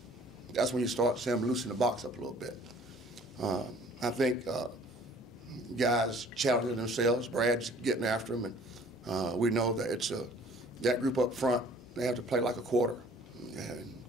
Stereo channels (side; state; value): both; normal; correlation 0.53